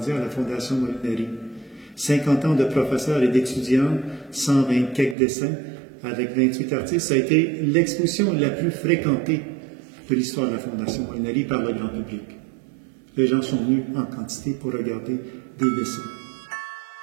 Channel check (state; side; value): drops out; left; at 5.2 s